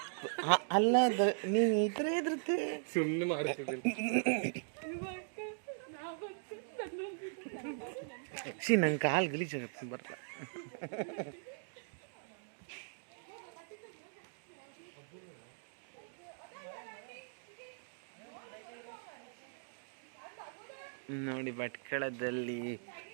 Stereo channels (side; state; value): left; silent; digital silence